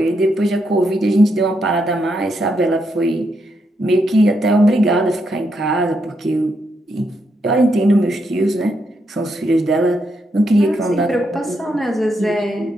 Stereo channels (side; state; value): both; normal; correlation 0.80